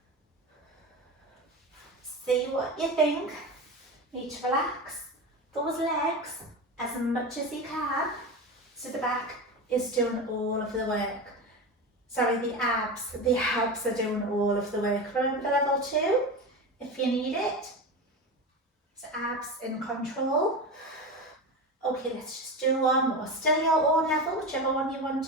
See what you think. Need to relax those legs as much as you can, so the back is doing all of the work. the abs. The abs are doing all of the work. Remember level 2, if you need it. So abs in control. Okay, let's just do one more. Still your own level, whichever one you want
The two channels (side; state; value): both; normal; correlation 0.24